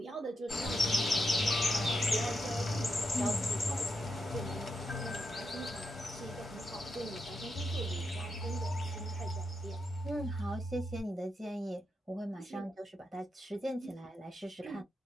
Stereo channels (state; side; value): normal; both; correlation 0.85